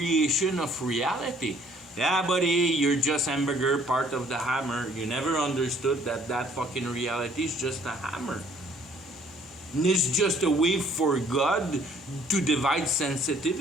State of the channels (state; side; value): normal; both; correlation 0.60